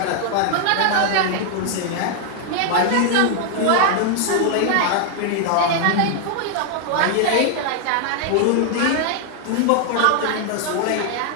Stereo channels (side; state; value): both; different; correlation 0.00